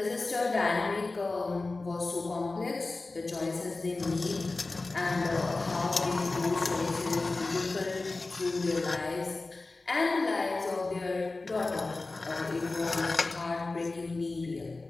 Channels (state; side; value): quieter; right; 3.4 dB